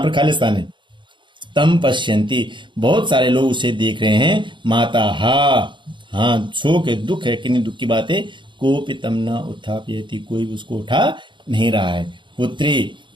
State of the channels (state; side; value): late; left; 0.23 ms